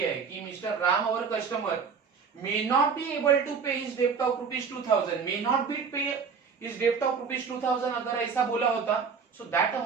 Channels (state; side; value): quieter; left; 5.8 dB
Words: है कि mister Ram our customer may not be able to pay his debt of rupees 2000, may not be pay his debt of rupees 2000, अगर ऐसा बोला होता, so that